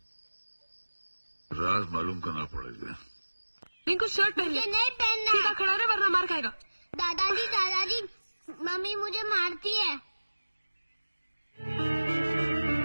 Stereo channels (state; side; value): inverted; both; correlation -1.00